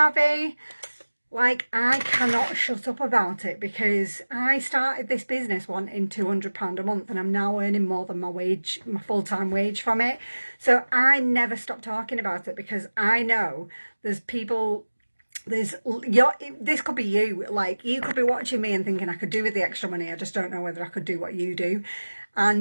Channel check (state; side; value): inverted; both; correlation -1.00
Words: Like, I cannot shut up about it, because I started this business wanting £200 a month, and I'm now earning more than my wage, my full-time wage from it. So I never stop talking about it, because I know there's people, this could be you, like, you could be watching me and thinking I could do with the extra money, I just don't know whether I could do what you do.